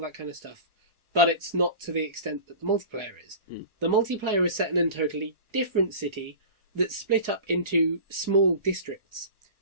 that kind of stuff. But it's not to the extent that the multiplayer is. The multiplayer is set in a totally different city that's split up into small districts.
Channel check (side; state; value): left; late; 1.4 ms